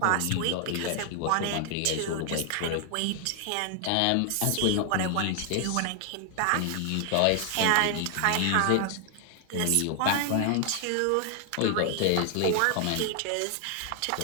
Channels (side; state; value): both; different; correlation 0.00